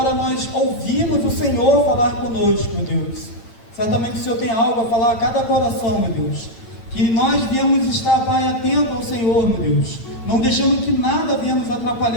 nós ouvimos o Senhor falar conosco, meu Deus. Certamente o Senhor tem algo a falar a cada coração, meu Deus, que nós viemos estar, Pai, atento ao Senhor, meu Deus, não deixando que nada venha nos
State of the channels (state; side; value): late; right; 8.9 ms